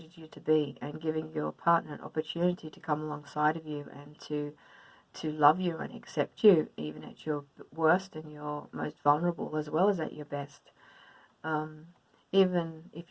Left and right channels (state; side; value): identical; both; correlation 1.00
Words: you to be, and giving your partner an opportunity to come alongside of you and to love you and accept you even at your worst and your most vulnerable as well as at your best. Even if